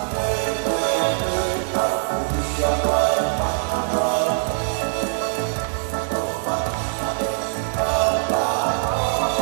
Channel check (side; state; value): left; silent; digital silence